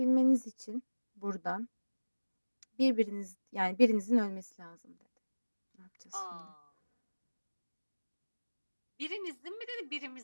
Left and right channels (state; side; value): inverted; both; correlation -1.00